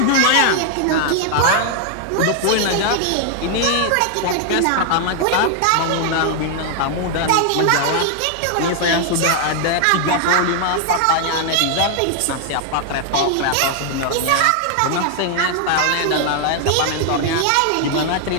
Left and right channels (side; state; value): both; different; correlation 0.00